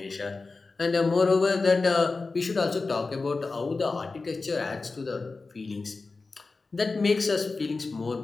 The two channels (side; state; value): right; quieter; 3.9 dB